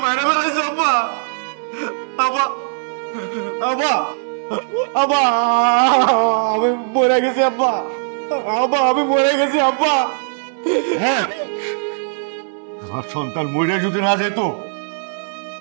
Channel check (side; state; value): left; silent; 67 dB below the other